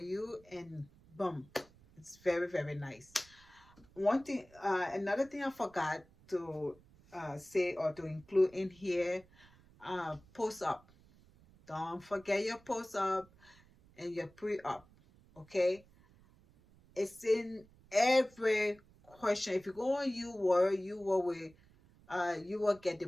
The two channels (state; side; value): noise; right; rumble, 27 dB below the sound